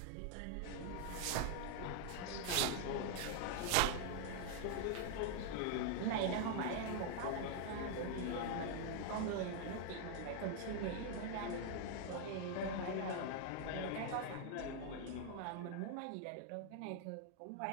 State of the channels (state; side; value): different; both; correlation 0.00